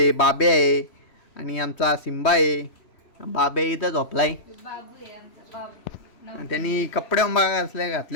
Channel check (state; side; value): late; right; 3.2 ms